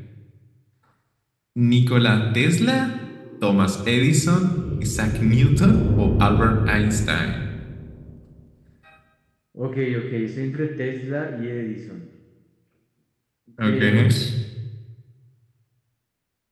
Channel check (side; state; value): both; identical; correlation 1.00